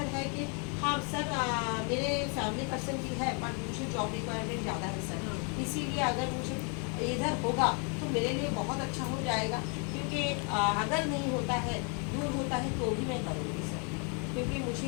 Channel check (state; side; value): quieter; right; 37.0 dB